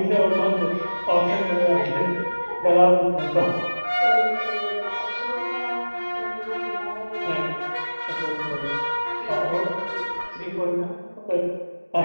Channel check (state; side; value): inverted; both; correlation -1.00